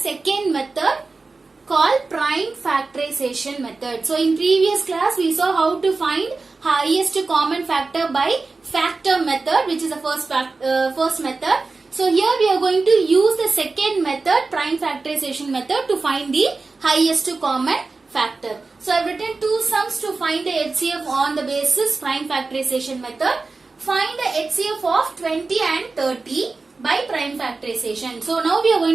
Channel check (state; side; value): quieter; left; 3.9 dB